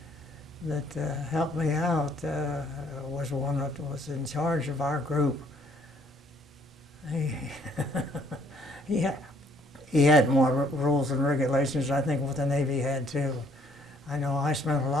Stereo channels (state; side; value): normal; both; correlation 0.64